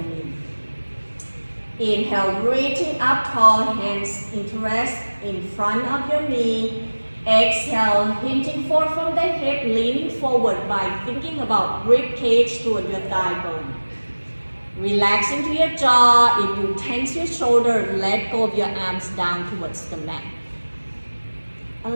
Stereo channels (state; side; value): inverted; both; correlation -1.00